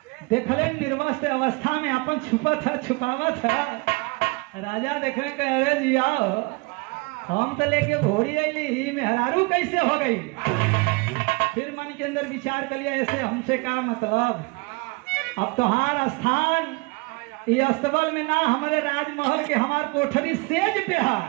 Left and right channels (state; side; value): quieter; left; 27.5 dB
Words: देखले निर्वस्त्र अवस्था में अपन छुपावत है। राजा देख रहे हैं, अरे जी आओ, हम तो लेके घोड़ी अली ही मेहरारू कैसे हो गई। फिर मन के अंदर विचार कर लिया, ऐसे हमसे क्या मतलब, अब तुम्हारा स्थान ये अस्तबल में ना, हमारे राजमहल के हमार कोठरी सेज पे है।